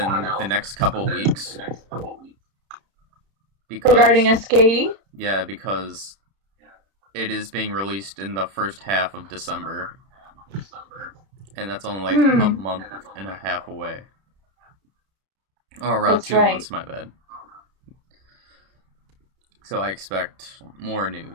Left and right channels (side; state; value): left; late; 31 ms